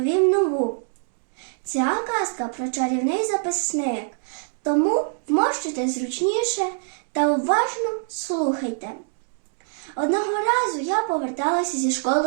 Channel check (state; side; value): silent; left; digital silence